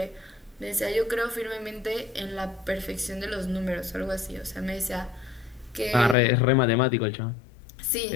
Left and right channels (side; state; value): right; drops out; at 6.2 s